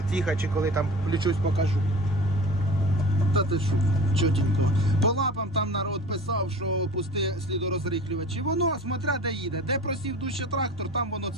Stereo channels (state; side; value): normal; both; correlation 0.39